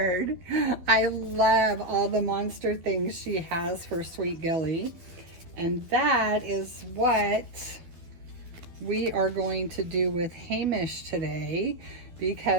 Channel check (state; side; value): late; left; 12 ms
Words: I love all the monster things she has for Sweet Gilly. And that is what we are going to do with Hamish today,